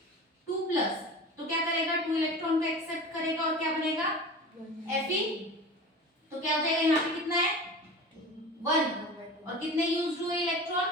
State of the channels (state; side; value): normal; both; correlation 0.34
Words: तो क्या करेगा? 2 इलेक्ट्रॉन को एक्सेप्ट करेगा और क्या बनेगा? Fe। तो क्या हो जाएगा? यहाँ पे कितना है? 1। और कितने यूज्ड हुए इलेक्ट्रॉन?